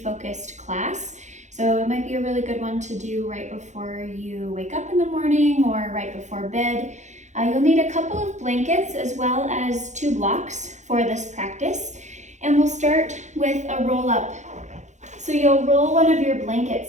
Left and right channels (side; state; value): left; late; 0.34 ms